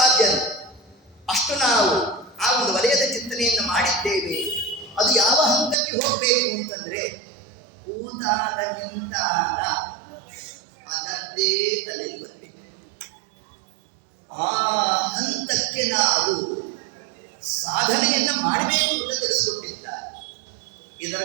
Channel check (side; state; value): left; drops out; at 5.8 s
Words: ಅಷ್ಟು ನಾವು ಆ ಒಂದು ವಲಯದ ಚಿಂತನೆಯನ್ನು ಮಾಡಿದ್ದೇವೆ. ಅದು ಯಾವ ಹಂತಕ್ಕೆ ಹೋಗಬೇಕು ಅಂತಂದ್ರೆ ಕೂತಾಗ ನಿಂತಾಗ ಅದರದ್ದೇ ತಲೆಯಲ್ಲಿ ಬರಬೇಕು. ಆ ಹಂತಕ್ಕೆ ನಾವು ಸಾಧನೆಯನ್ನು ಮಾಡಬೇಕು ಅಂತ ತಿಳಿಸ್ಕೊಟ್ಟಿದ್ದಾರೆ. ಇದರ